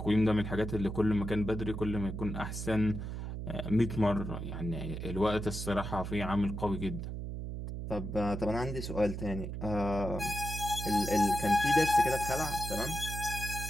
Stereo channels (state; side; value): noise; right; hum, 6 dB below the sound